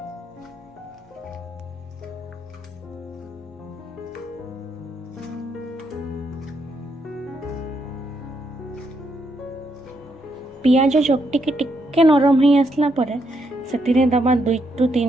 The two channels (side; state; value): both; normal; correlation 0.77